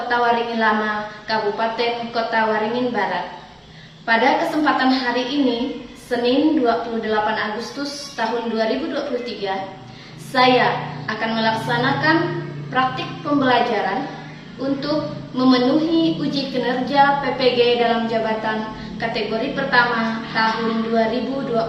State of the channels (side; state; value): both; identical; correlation 1.00